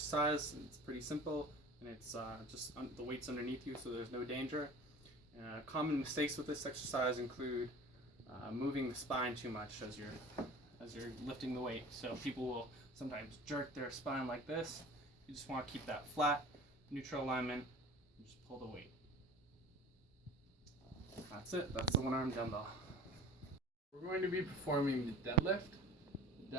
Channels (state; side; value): normal; both; correlation 0.41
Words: It's pretty simple, and it's just the weight's underneath you, so there's no danger. Common mistakes with this exercise include moving the spine too much as you're lifting the weight. So people will sometimes jerk their spine like this. You just want to keep that flat, neutral alignment, and just pull the weight. That's it. That's the one-arm dumbbell. We're going to be performing the deadlift. The